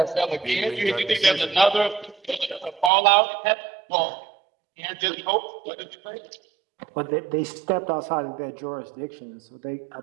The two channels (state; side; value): drops out; left; at 2.9 s